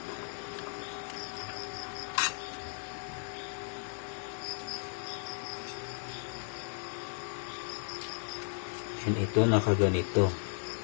And ito nakaganito.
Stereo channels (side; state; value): right; silent; 54 dB below the other